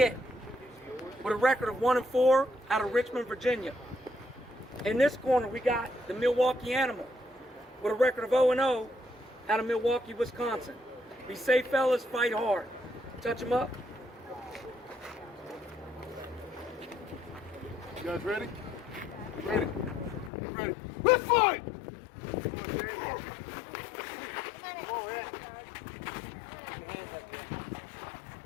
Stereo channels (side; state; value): right; drops out; at 20.3 s